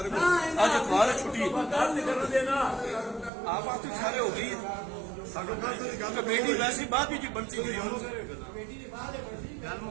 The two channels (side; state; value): left; drops out; at 3.3 s